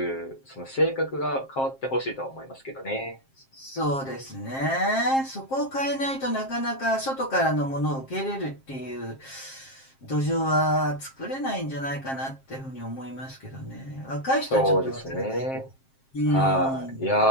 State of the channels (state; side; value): late; right; 7.5 ms